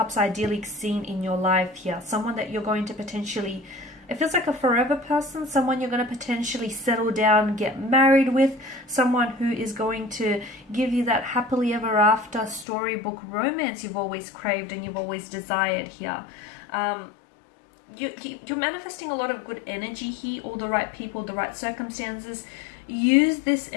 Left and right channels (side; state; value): right; drops out; at 12.7 s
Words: ideally seen in your life here. Someone that you're going to potentially, it feels like a forever person, someone you're going to potentially settle down, get married with, someone who is going to give you that happily ever after storybook romance you've always craved and you've always desired here. You're manifesting a lot of good energy here, all the right people, the right circumstances. Use this